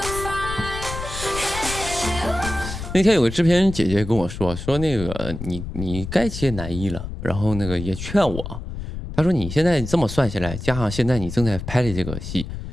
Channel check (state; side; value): noise; left; rumble, 8 dB below the sound